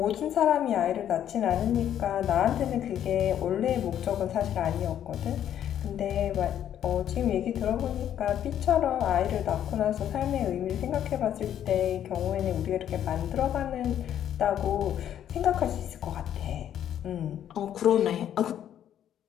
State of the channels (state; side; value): quieter; right; 10.4 dB